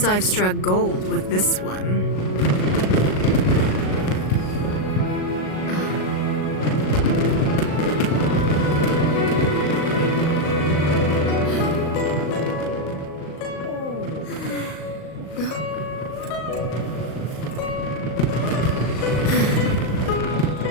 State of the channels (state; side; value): late; right; 38 ms